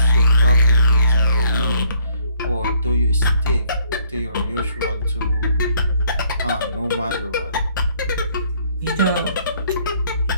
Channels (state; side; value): inverted; both; correlation -0.64